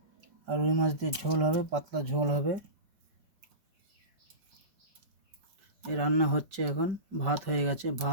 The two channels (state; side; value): late; left; 5.1 ms